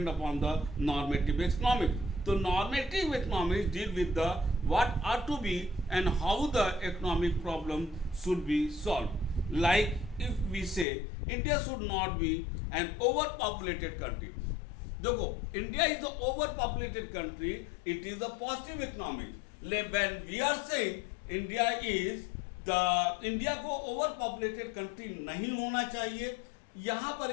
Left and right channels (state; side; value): drops out; right; at 10.9 s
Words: upon the normative economics. तो normative economics deal with the what are to be and how the economic problem should be solve. Like if we say India should not be an over populated country. देखो, India is the over populated country, it is the positive economics. When we are saying India को ओवर पॉपुलेटेड कंट्री नहीं होना चाहिए, यहां पर